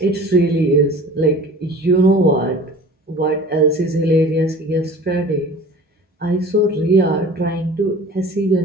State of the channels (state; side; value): normal; both; correlation 0.43